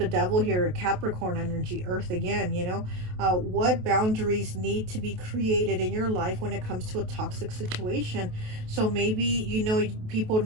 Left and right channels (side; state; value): left; late; 28 ms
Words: devil here, Capricorn energy, earth again, you know, what boundaries need to be created in your life when it comes to a toxic situation. So maybe, you know, people